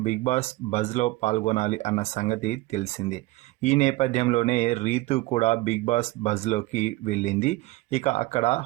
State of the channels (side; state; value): left; quieter; 19.6 dB